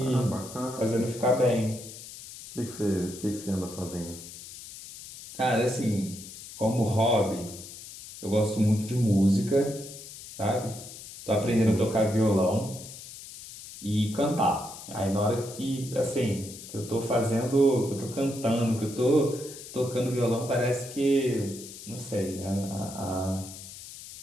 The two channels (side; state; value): left; noise; hiss, 14 dB below the sound